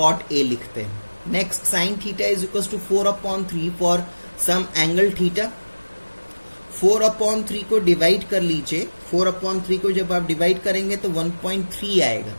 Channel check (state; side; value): inverted; both; correlation -1.00